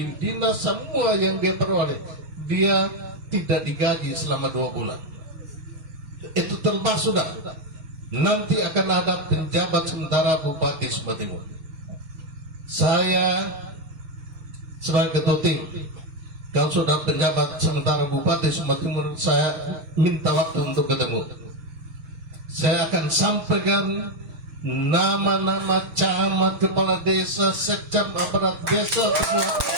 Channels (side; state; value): left; late; 6.3 ms